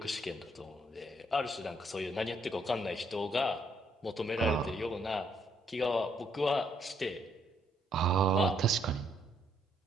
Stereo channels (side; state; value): both; normal; correlation 0.71